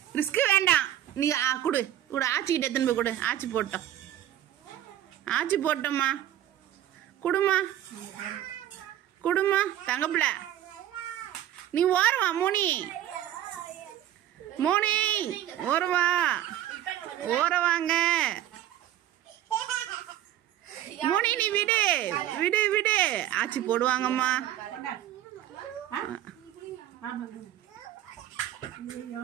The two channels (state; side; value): quieter; left; 12.2 dB